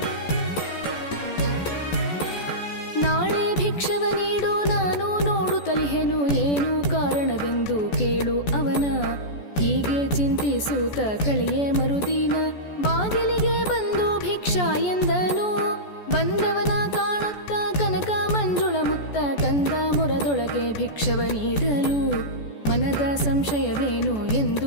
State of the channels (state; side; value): late; right; 14 ms